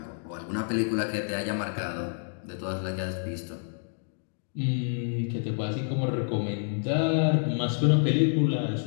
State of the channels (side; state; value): right; silent; digital silence